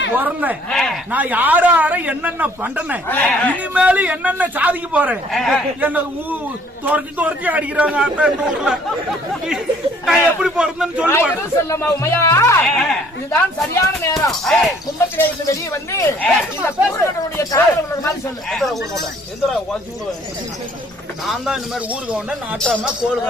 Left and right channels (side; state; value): both; normal; correlation 0.59